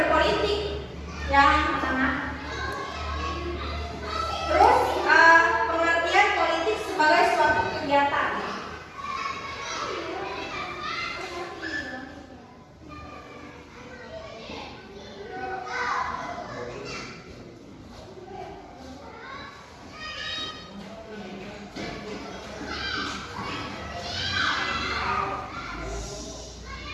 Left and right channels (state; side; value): identical; both; correlation 1.00